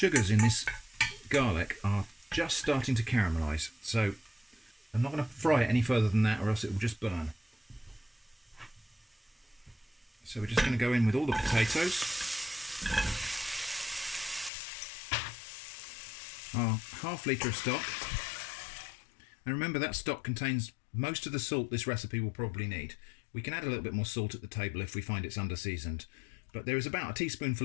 in this garlic are just starting to caramelize. So I'm not going to fry it any further than that or else it will just burn. So we're just going to go in with all the potatoes. Our ½ litre of stock. And remember that stock contains most of the salt this recipe will probably need. We can add a little bit more salt at the table if we find it's under seasoned, but there is about a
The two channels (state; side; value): drops out; right; at 14.5 s